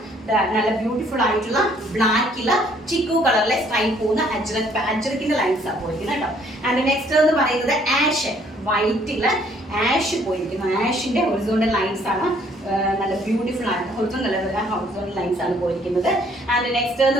നല്ല ബ്യൂട്ടിഫുൾ ആയിട്ടുള്ള ബ്ലാക്കില് ചിക്കു കളറിലെ സ്ട്രൈപ്പ് പോകുന്ന അജ്രക്കിന്റെ ലൈൻസ് ആണ് പോയിരിക്കുന്നത് കേട്ടോ. ആൻഡ് നെക്സ്റ്റ് എന്ന് പറയുന്നത് ആഷ്, വൈറ്റില് ആഷ് പോയിരിക്കുന്നു. ആഷിന്റെ ഹൊറിസോണ്ടൽ ലൈൻസ് ആണ്. നല്ല ബ്യൂട്ടിഫുൾ ആണ്. ഹൊറിസോണ്ടൽ ലൈൻസ് ആണ് പോയിരിക്കുന്നത്. ആൻഡ് നെക്സ്റ്റ്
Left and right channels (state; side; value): normal; both; correlation 0.63